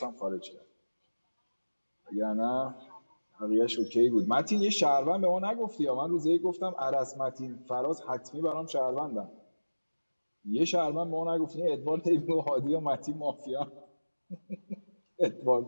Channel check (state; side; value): inverted; both; correlation -1.00